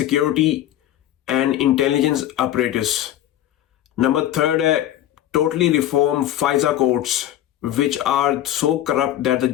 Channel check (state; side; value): quieter; right; 12.5 dB